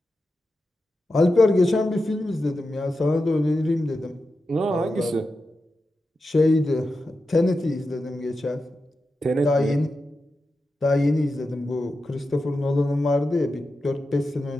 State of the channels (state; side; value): normal; both; correlation 0.90